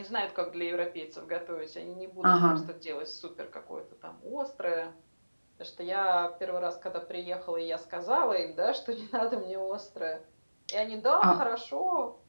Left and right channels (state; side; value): inverted; both; correlation -1.00